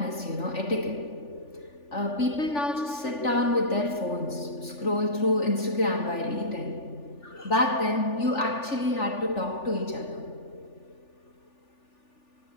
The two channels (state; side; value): late; right; 3.4 ms